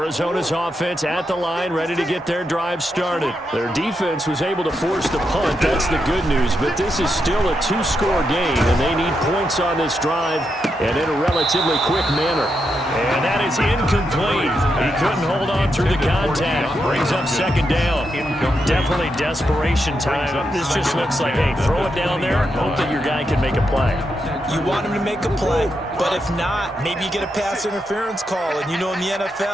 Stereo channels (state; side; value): normal; both; correlation 0.84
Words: offense at the line, ready to get their drive started. Their defense was able to force the punt. That's the good news, but this is still a 2-score game, and they need points on this drive and in a relatively quick manner. And that is incomplete. He couldn't hold on through the contact. Brings up second down. Definitely desperation time. This just looks like, hey, throw it down there, hope that your guy can make a play. You want him to make a play, but if not, maybe you get a pass interference call, and you know in the